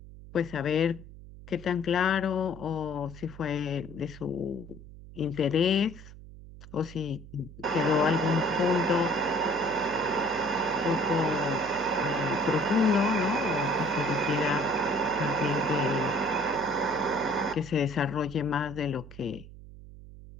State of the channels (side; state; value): right; noise; hum, 17 dB below the sound